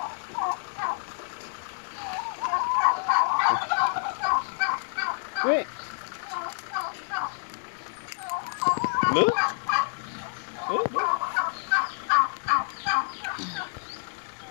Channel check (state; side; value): silent; right; digital silence